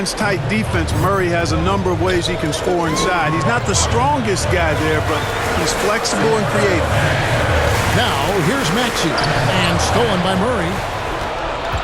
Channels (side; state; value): both; identical; correlation 1.00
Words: tight defense, Murray has a number of ways he can score inside. He's not the strongest guy there, but he's flexible and creative. Now, here's Maxey, and stolen by Murray.